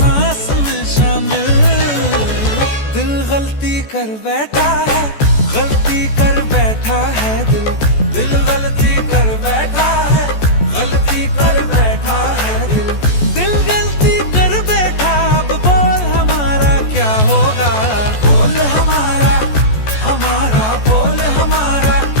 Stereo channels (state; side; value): late; right; 14 ms